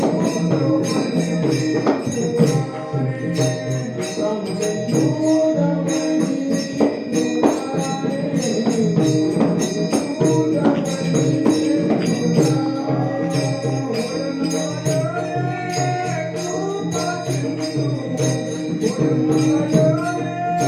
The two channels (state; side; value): identical; both; correlation 1.00